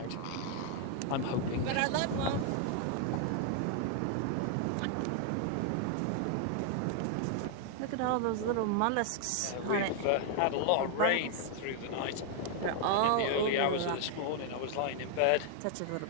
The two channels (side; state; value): both; different; correlation 0.00